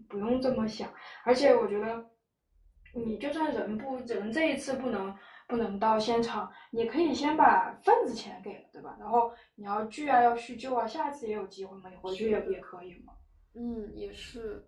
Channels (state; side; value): identical; both; correlation 1.00